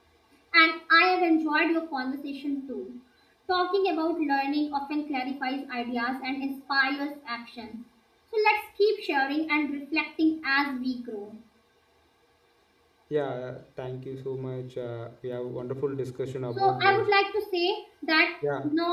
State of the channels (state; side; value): identical; both; correlation 1.00